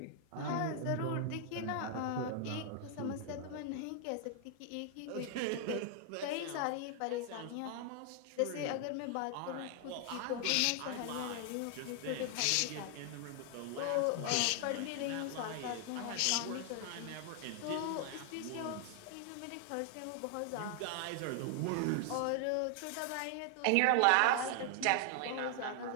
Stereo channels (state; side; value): different; both; correlation 0.00